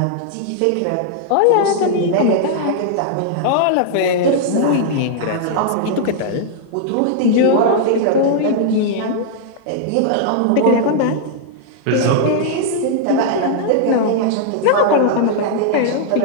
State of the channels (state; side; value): different; both; correlation -0.01